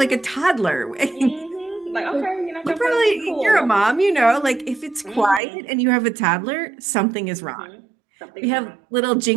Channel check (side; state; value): left; drops out; at 5.4 s